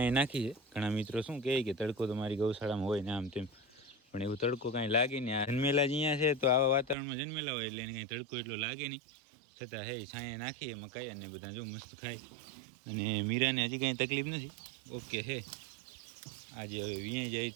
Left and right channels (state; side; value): drops out; left; at 7.0 s